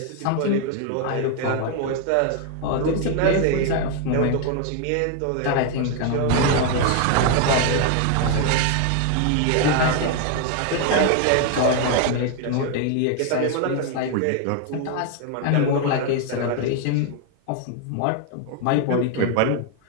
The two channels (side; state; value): both; different; correlation 0.01